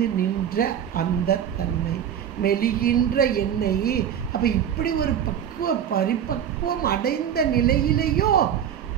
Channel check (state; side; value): quieter; left; 9.2 dB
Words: நின்ற அந்த தன்மை, மெலிகின்ற எண்ணெய். அப்போ இப்படி ஒரு பரிபக்குவம் அடைந்த நிலையிலேயோ